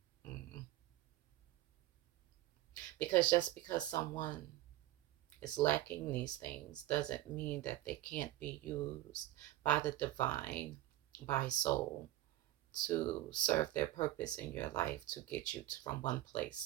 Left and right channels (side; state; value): left; quieter; 15.6 dB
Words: mm, because just because someone is lacking these things doesn't mean that they can't be used by the divine, by soul, to serve their purpose in your life, to get you from one